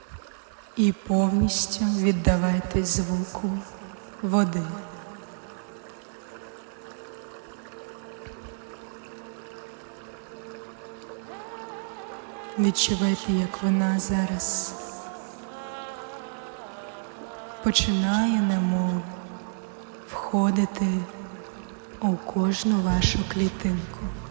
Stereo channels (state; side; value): silent; left; 59 dB below the other